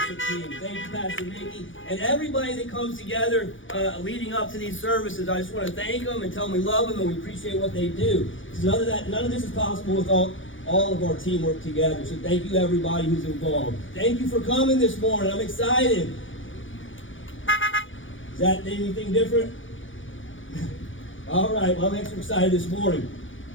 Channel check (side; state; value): right; late; 0.56 ms